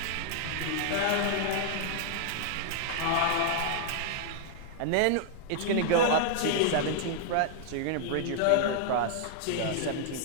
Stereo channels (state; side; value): different; both; correlation -0.01